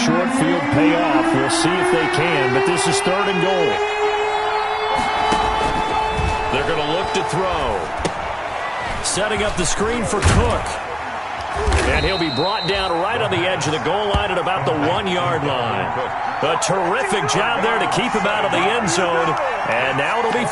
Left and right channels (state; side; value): identical; both; correlation 1.00